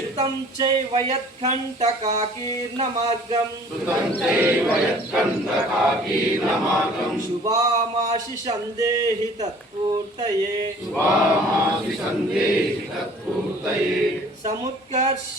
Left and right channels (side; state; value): both; normal; correlation 0.51